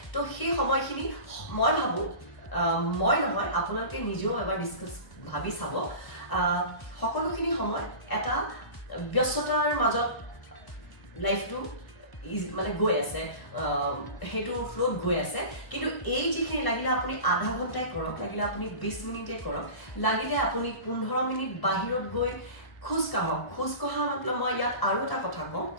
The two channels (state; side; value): late; right; 1.2 ms